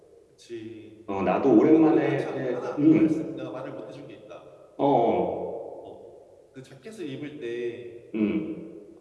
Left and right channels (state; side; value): identical; both; correlation 1.00